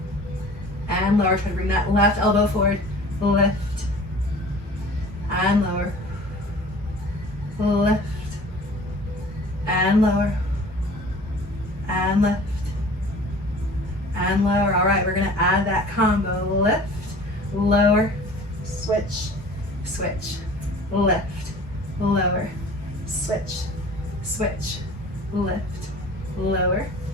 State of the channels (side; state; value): both; normal; correlation 0.45